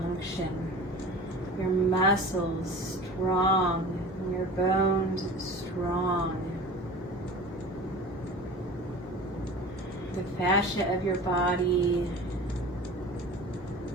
function, your muscles strong, and your bones strong. The fascia of your body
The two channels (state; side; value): normal; both; correlation 0.37